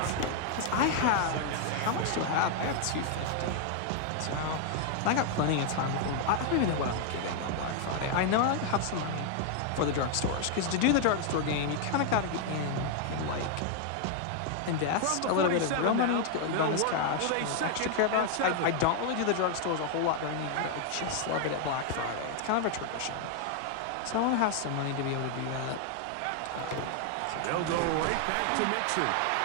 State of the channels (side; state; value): both; different; correlation 0.00